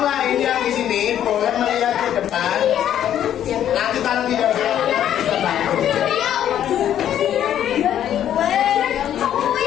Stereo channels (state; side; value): quieter; right; 10.6 dB